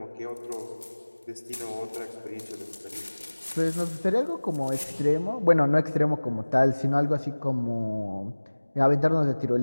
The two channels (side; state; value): both; inverted; correlation -1.00